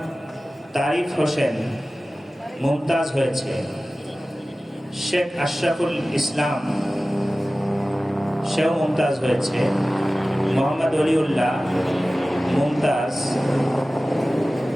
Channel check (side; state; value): both; normal; correlation 0.96